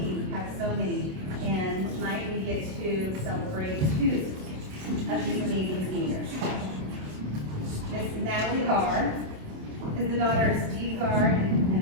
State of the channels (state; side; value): late; left; 27 ms